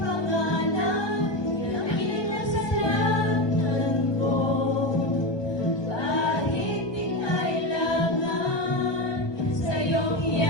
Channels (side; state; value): right; late; 1.2 ms